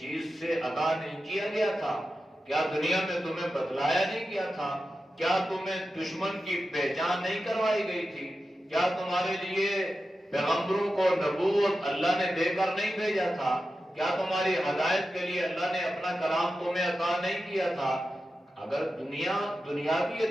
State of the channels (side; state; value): both; normal; correlation 0.92